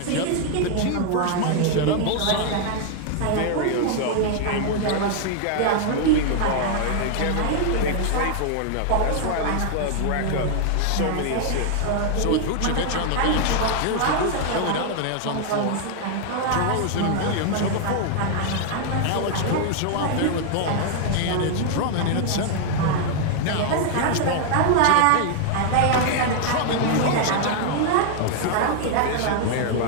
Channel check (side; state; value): both; different; correlation 0.00